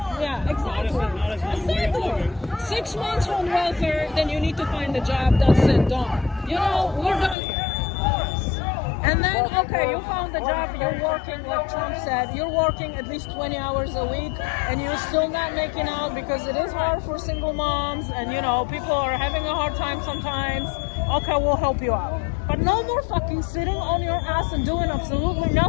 Yeah, exactly. Not as long as Exactly. 6 months on welfare, then you need to find a job. That's it, done. You know, we're done here. And then, okay, you found a job, you're working, like Trump said, you're working at least 20 hours a week, and you're still not making out because it is hard for single moms, and you know, people are having a hard time sometimes. Okay, we'll help you out. But no more fucking sitting on your ass and doing absolutely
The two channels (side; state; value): right; drops out; at 7.4 s